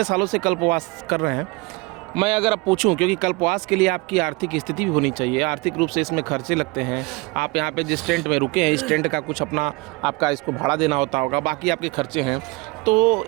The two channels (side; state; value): left; quieter; 25.6 dB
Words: सालों से कल्पवास कर रहे हैं, मैं अगर आप पूछूं, क्योंकि कल्पवास के लिए आपकी आर्थिक स्थिति भी होनी चाहिए, आर्थिक रूप से इसमें खर्चे लगते हैं। आप यहाँ पे जिस टेंट में रुके हैं, इस टेंट का कुछ अपना आपका इसको भाड़ा देना होता होगा, बाकी आपके खर्चे हैं। तो